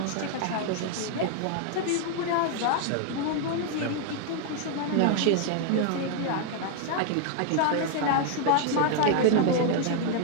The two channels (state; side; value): different; both; correlation 0.00